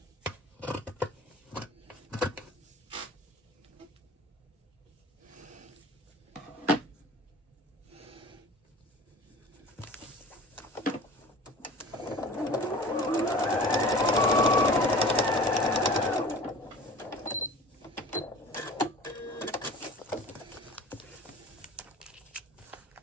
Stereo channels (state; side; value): normal; both; correlation 0.42